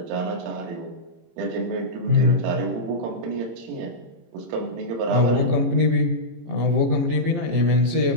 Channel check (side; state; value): left; late; 17 ms